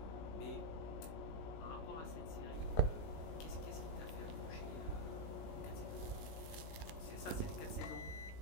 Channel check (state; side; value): late; right; 19 ms